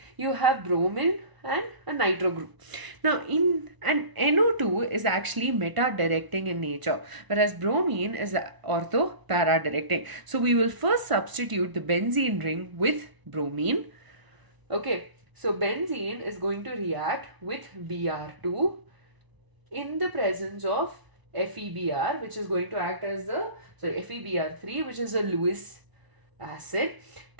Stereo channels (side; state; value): left; late; 1.0 ms